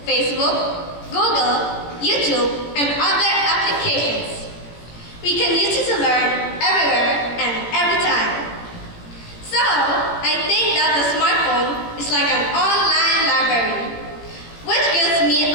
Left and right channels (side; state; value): right; late; 17 ms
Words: Facebook, Google, YouTube, and other applications. We can use it to learn everywhere and every time. So, I think that the smartphone is like an online library, which gives me